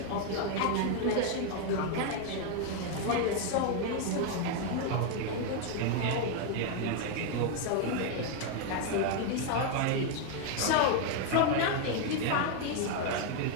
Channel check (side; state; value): both; different; correlation 0.01